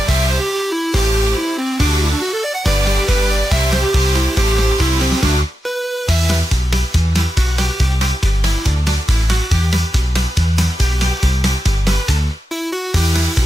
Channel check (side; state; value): both; normal; correlation 0.90